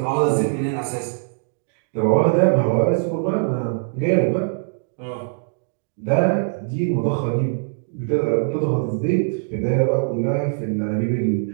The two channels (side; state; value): left; silent; digital silence